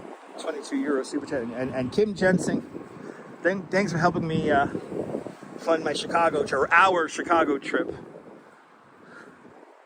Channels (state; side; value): identical; both; correlation 1.00